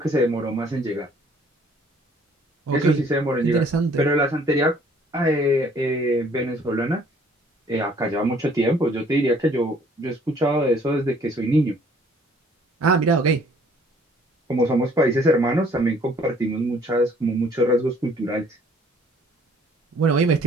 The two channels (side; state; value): both; normal; correlation 0.59